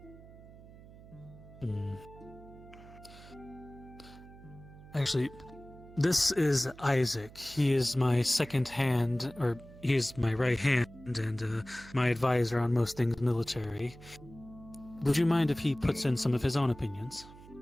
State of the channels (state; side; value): noise; right; hum, 19 dB below the sound